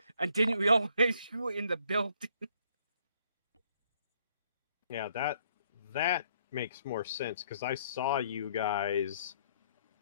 And didn't we always shoot in the building? Yeah, that makes more sense because I saw you guys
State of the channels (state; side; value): inverted; both; correlation -0.67